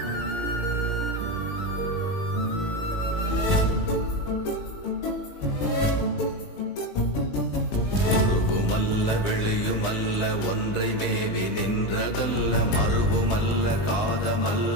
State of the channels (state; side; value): late; right; 20 ms